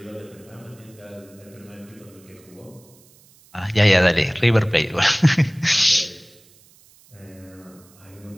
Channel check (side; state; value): right; noise; hiss, 28 dB below the sound